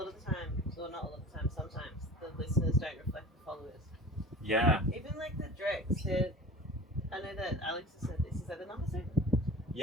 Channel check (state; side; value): normal; both; correlation 0.39